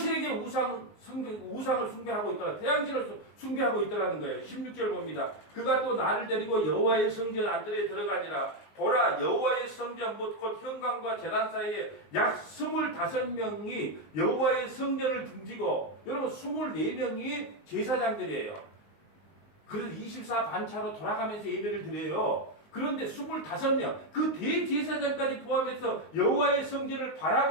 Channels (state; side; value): late; right; 19 ms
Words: 우상을 숭배하고 있더라. 태양신을 숭배하고 있더라는 거예요. 16절 봅니다. 그가 또 나를 데리고 여호와의 성전 안뜰에 들어가니라. 보라 여호와의 성전 곧 현관과 제단 사이에 약 25명이 여호와의 성전을 등지고, 여러분 24명이 제사장들이에요. 그래서 24 반차로 돌아가면서 예배를 드려요. 그런데 25명, 그 대제사장까지 포함해서 여호와의 성전을